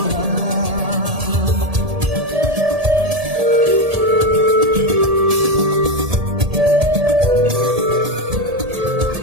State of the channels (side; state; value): left; late; 1.7 ms